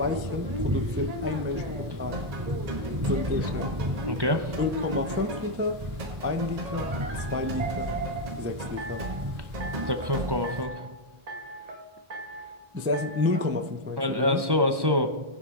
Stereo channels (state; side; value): late; left; 1.1 ms